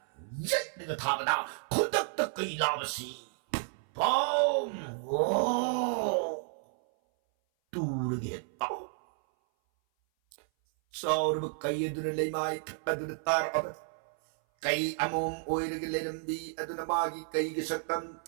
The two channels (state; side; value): silent; left; 57 dB below the other